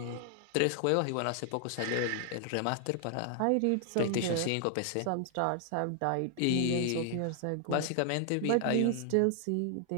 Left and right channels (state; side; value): different; both; correlation 0.00